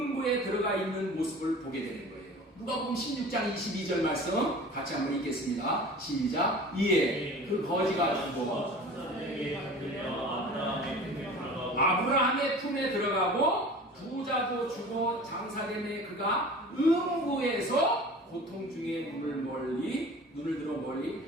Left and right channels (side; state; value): both; normal; correlation 0.40